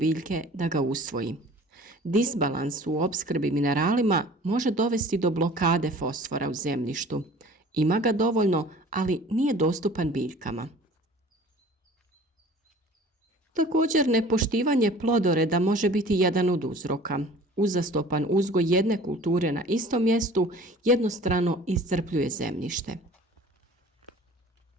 da ga usvoji. Disbalans u opskrbi mineralima može dovesti do blokade fosfora u zemljištu. Ima ga dovoljno, ali nije dostupan biljkama. Također, nepoštivanje plodoreda može biti jedan od uzroka. Uzastopan uzgoj jedne kulture na istom mjestu jednostrano iscrpljuje zemljište.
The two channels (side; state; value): both; normal; correlation 0.46